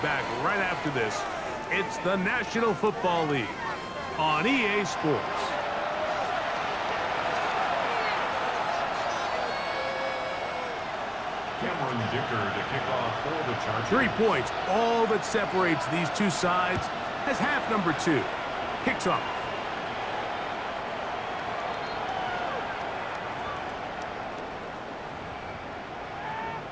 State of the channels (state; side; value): identical; both; correlation 1.00